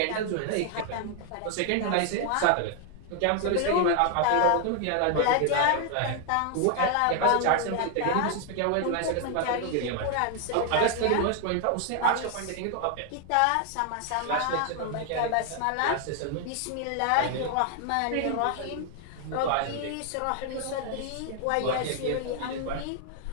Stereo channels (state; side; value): different; both; correlation 0.00